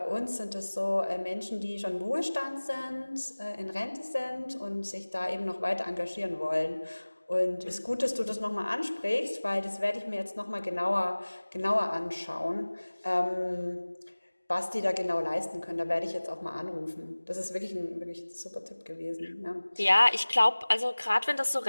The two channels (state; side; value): inverted; both; correlation -1.00